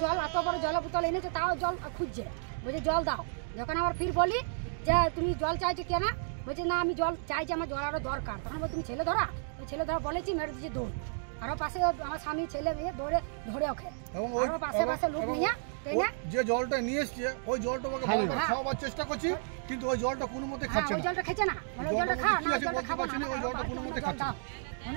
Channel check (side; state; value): left; silent; digital silence